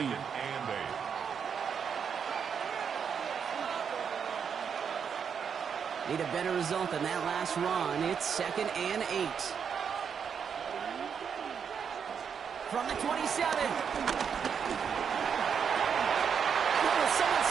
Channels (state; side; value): quieter; left; 7.0 dB